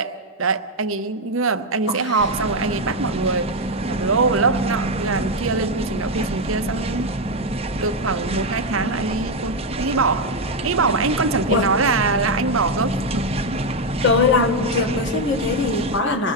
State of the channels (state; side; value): normal; both; correlation 0.05